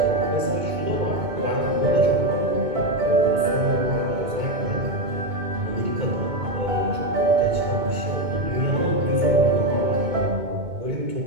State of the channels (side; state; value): left; late; 2.2 ms